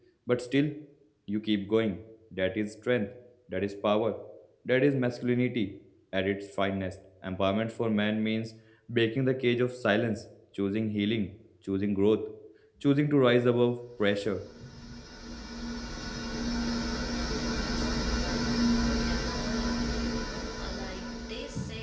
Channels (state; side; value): identical; both; correlation 1.00